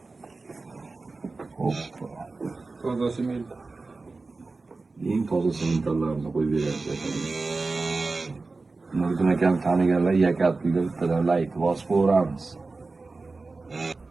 Toza sement. Eng toza sementlarni qo'yib beryapti. Nuriddin akam taniganlar Yakal pulga bittadan layk bosib qo'yamiz.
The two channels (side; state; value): left; quieter; 3.7 dB